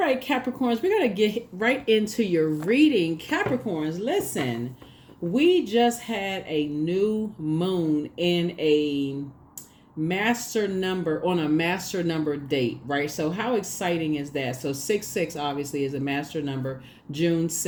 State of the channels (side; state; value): both; identical; correlation 1.00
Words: Capricorns, we're going to get right into your reading. Capricorns, listen, we just had a new moon in a master number on a master number date, right? So how exciting is that? So 6 obviously is a master number, June